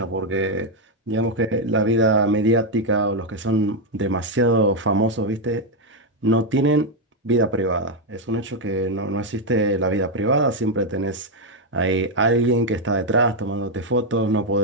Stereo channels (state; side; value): normal; both; correlation 0.02